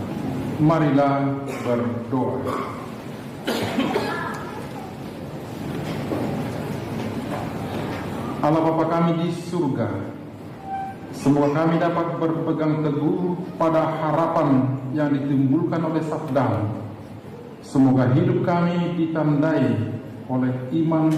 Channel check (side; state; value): both; identical; correlation 1.00